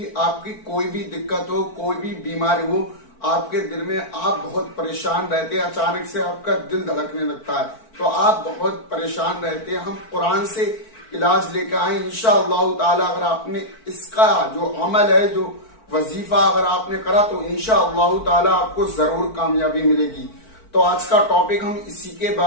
آپ کی کوئی بھی دقت ہو، کوئی بھی بیماری ہو، آپ کے دل میں آپ بہت پریشان رہتے ہیں، اچانک سے آپ کا دل دھڑکنے لگتا ہے تو آپ بہت پریشان رہتے ہیں۔ ہم قرآن سے علاج لے کے آئے انشاءاللہ تعالی۔ اگر آپ نے اس کا جو عمل ہے، جو وظیفہ اگر آپ نے کرا تو انشاءاللہ تعالی آپ کو ضرور کامیابی ملے گی۔ تو آج کا ٹاپک ہم اسی کے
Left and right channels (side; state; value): right; late; 4.5 ms